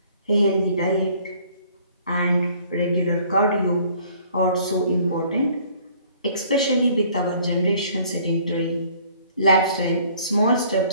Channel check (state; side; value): inverted; both; correlation -0.57